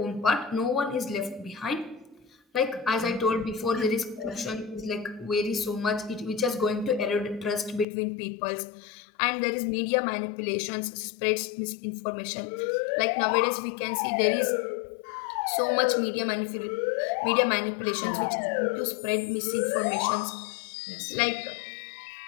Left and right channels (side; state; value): right; drops out; at 7.9 s